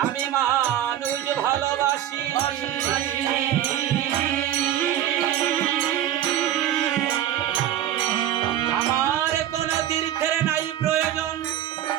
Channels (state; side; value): quieter; left; 11.7 dB